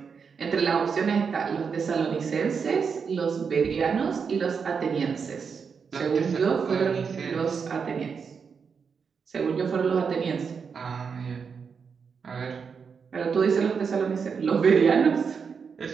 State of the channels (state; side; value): quieter; left; 6.0 dB